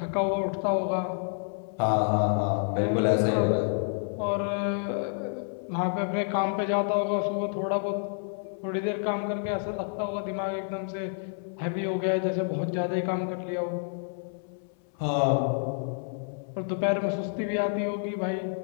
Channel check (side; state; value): right; silent; 56 dB below the other